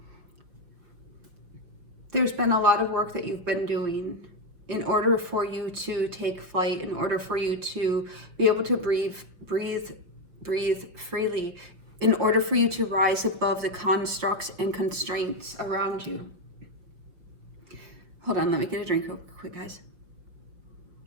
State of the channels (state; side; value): late; left; 5.6 ms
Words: There's been a lot of work that you've been doing in order for you to take flight, in order for you to be able to breathe freely, in order for you to rise above the constructs and constraints around you. Hold on, let me get a drink real quick, guys.